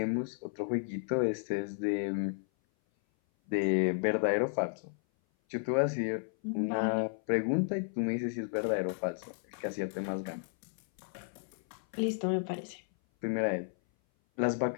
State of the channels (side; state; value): right; silent; 56 dB below the other